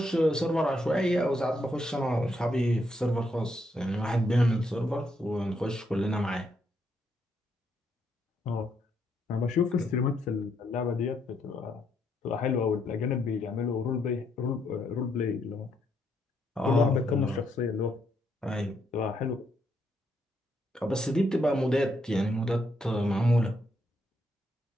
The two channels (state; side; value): normal; both; correlation 0.76